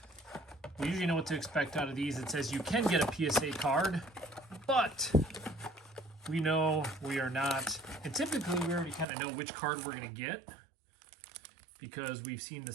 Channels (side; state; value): left; drops out; at 9.1 s